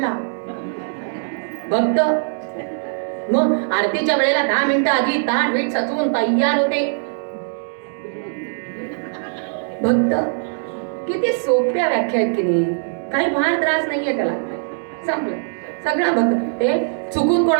भक्त. मग आरतीच्या वेळेला 10 मिनिटं आधी ताट वीट सचवून तयार होते. भक्त. किती सोप्या व्याख्या आहेत की नाही, काही फार त्रास नाहीये त्याला. संपलं सगळं भक्त. हे चुकून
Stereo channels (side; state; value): left; silent; digital silence